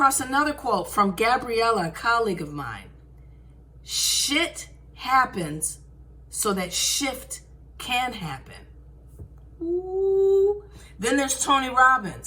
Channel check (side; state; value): both; identical; correlation 1.00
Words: another quote from Gabriella, a colleague of mine. Shit happens so that shift can happen. Ooh. Then there's Tony